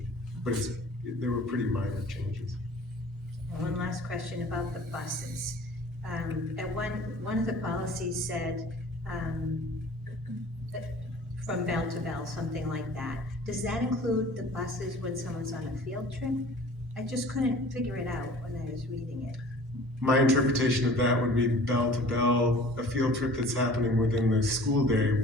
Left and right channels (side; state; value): both; normal; correlation 0.46